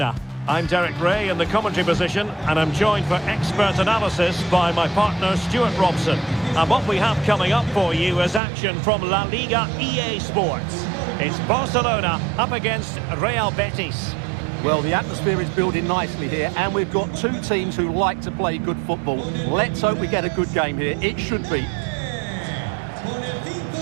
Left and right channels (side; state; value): left; drops out; at 8.4 s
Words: I'm Derek Ray in the commentary position, and I'm joined for expert analysis by my partner Stuart Robson. And what we have coming up for you is action from La Liga EA Sports. It's Barcelona up against Real Betis. Well, the atmosphere is building nicely here, and we've got two teams who like to play good football. Let's hope we get a good game here. It should be.